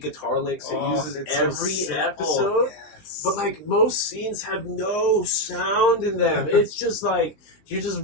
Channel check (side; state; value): right; late; 20 ms